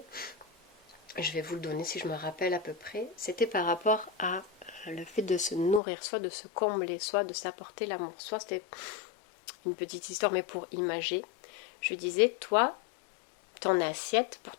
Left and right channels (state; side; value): drops out; right; at 5.8 s